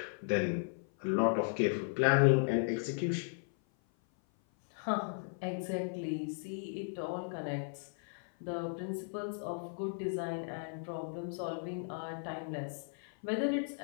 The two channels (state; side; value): silent; right; 54 dB below the other